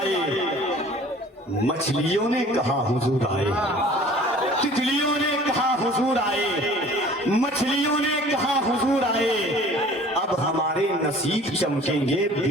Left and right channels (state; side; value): normal; both; correlation 0.48